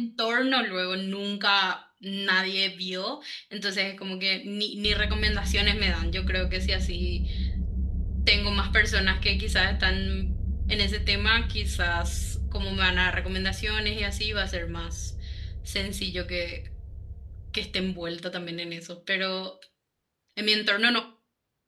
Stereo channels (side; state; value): both; identical; correlation 1.00